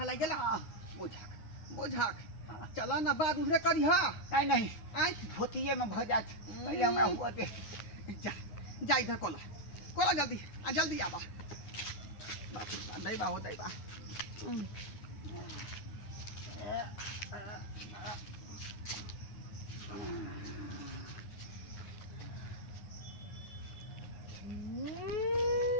लागी गेला बोझाक बोझाक चला ना बाद उधरे करी हा नहीं नहीं आज धोतिए में भ जात पहले हमरा हुआ दे जा जा इधर कोला कोला जल्दी जल्दी आबा बाप दैबा हो दैबा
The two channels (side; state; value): right; late; 9.6 ms